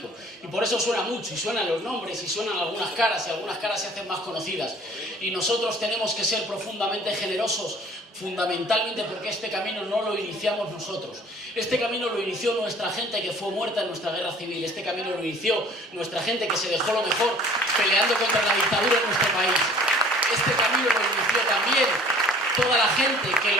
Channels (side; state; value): both; normal; correlation 0.51